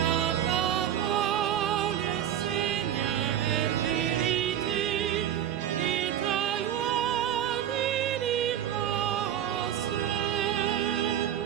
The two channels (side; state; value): left; quieter; 10.6 dB